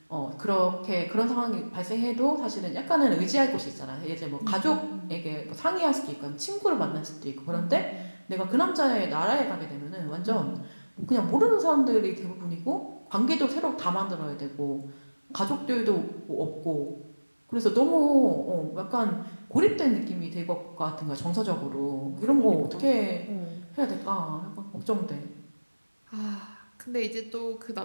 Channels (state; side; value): inverted; both; correlation -1.00